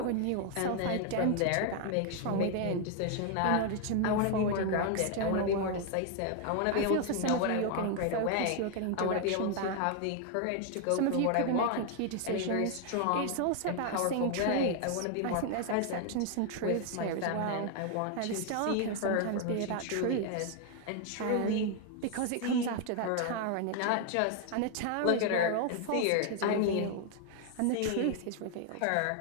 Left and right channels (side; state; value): both; different; correlation 0.00